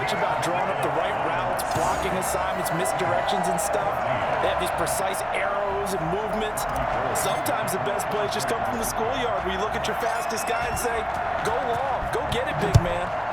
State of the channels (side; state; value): both; identical; correlation 1.00